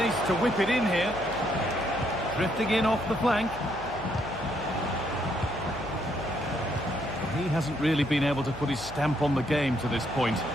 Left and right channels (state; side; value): noise; left; hum, 15 dB below the sound